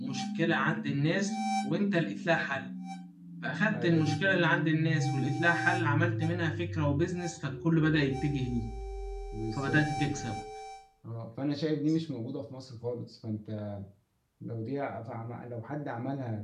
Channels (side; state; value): both; identical; correlation 1.00